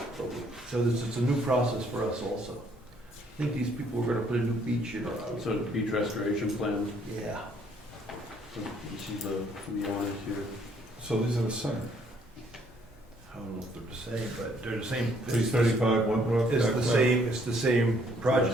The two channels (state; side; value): normal; both; correlation 0.65